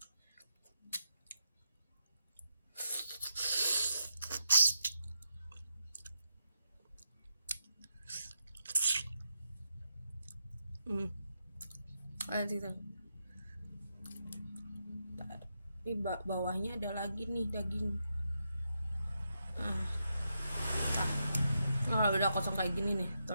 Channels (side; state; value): both; inverted; correlation -0.83